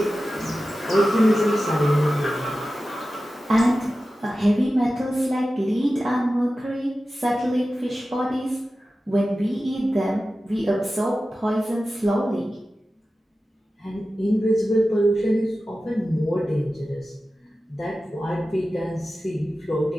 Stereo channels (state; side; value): normal; both; correlation 0.94